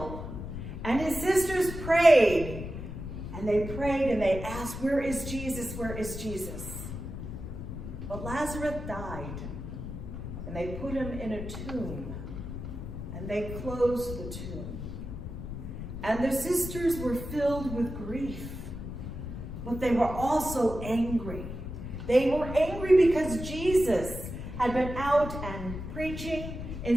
and his sisters prayed, and they asked, where is Jesus? Where is Jesus? But Lazarus died, and they put him in a tomb, and they closed the tomb. And the sisters were filled with grief, but they were also angry. They were angry because Jesus had been out and preaching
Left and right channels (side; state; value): left; noise; rumble, 7 dB below the sound